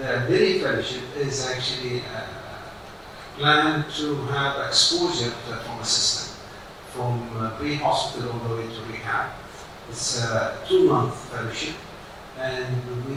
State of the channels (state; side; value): identical; both; correlation 1.00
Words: mini fellowship is actually plan to have exposure to the trauma system from pre-hospital all the way to rehab. It's a 2-month fellowship, and